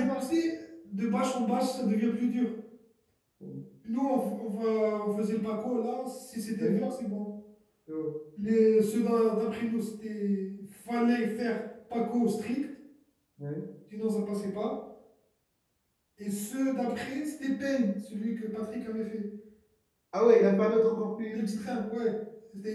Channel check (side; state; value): both; identical; correlation 1.00